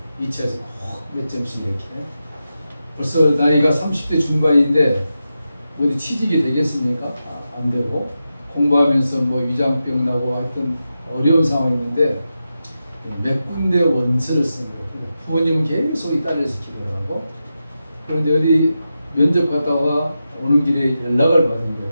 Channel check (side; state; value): both; inverted; correlation -0.90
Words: 2차에서 꼭 몇 점씩 이렇게. 벌써 나이가 30대 중반인데 어디 취직이 되겠습니까? 안 되고 공부하면서 뭐 위장병 나고 하여튼 어려운 상황인데 몇 군데 원서를 쓴 거예요. 부모님은 계속 이 딸을 지키려고 하고. 그런데 어디 면접 갔다가 오는 길에 연락을 받은 거예요.